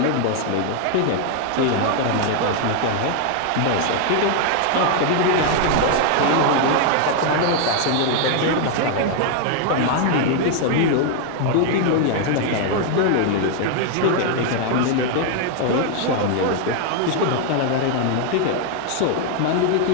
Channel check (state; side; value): different; both; correlation 0.00